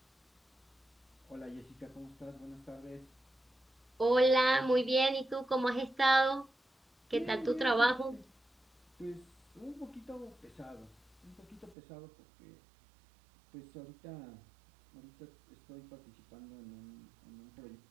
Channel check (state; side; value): drops out; left; at 11.8 s